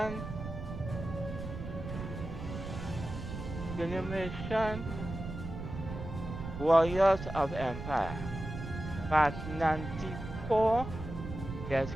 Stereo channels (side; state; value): right; noise; rumble, 8 dB below the sound